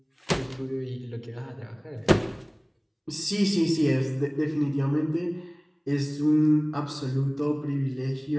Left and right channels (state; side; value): identical; both; correlation 1.00